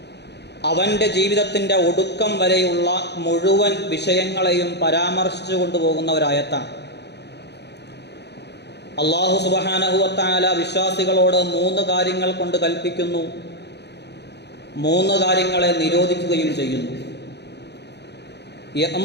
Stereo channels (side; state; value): right; late; 0.49 ms